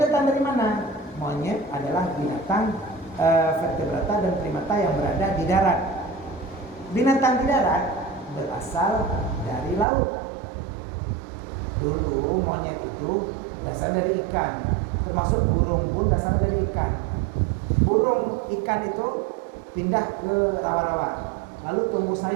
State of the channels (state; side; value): drops out; left; at 9.9 s